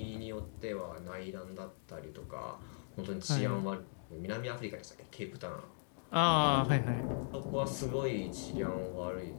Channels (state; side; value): silent; right; digital silence